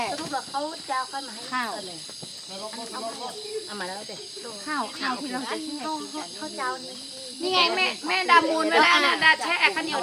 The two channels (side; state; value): both; identical; correlation 1.00